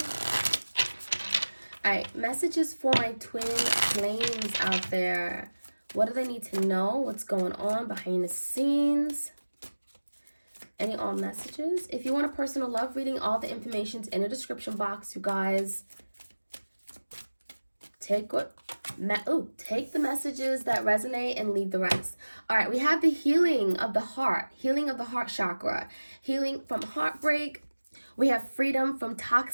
All right, messages for my twin flames out there. What do they need to know? What's going on behind the scenes? Any all messages? If you want a personal love reading, all the information's in the description box, you guys. Take the messages that resonate and leave the rest. All right, we have the healing of the heart chakra, healing from heartbreak. We have freedom from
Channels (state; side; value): inverted; both; correlation -1.00